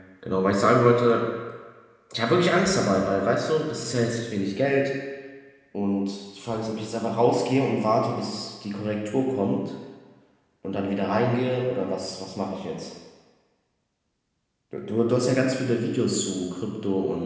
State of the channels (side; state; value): both; identical; correlation 1.00